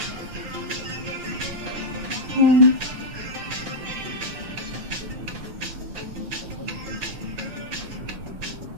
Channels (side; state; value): left; late; 6.3 ms